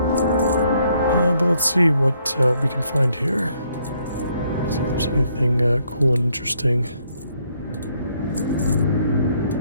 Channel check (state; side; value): inverted; both; correlation -0.71